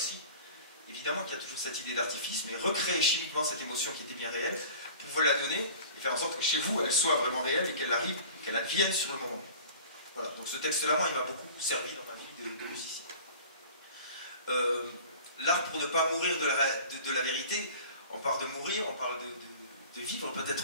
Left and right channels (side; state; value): both; inverted; correlation -0.42